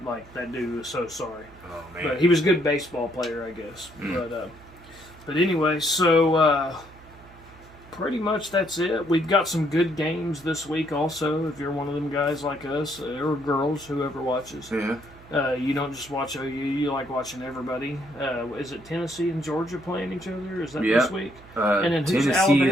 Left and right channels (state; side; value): noise; right; hum, 22 dB below the sound